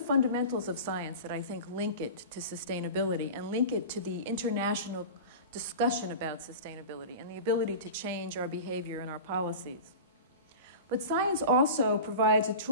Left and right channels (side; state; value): both; inverted; correlation -0.33